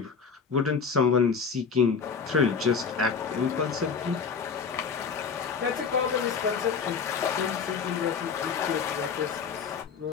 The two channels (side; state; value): right; quieter; 5.7 dB